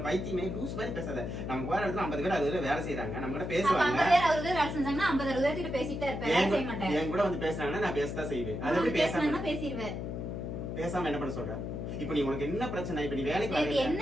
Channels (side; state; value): left; noise; hum, 5 dB below the sound